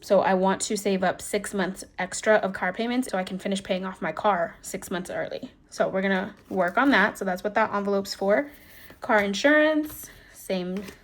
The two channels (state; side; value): identical; both; correlation 1.00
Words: I want to save up 6 months extra of car payments so I can finish paying off my car 6 months early. So we're going to work on that. So that's what that envelope's for. Car insurance, same,